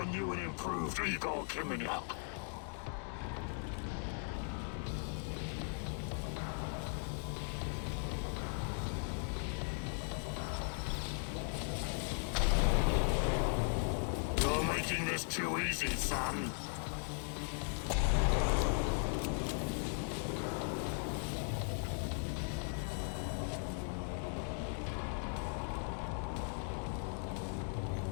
new and improved Igor Kiminyak. You're making this too easy, son.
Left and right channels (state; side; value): silent; right; 52 dB below the other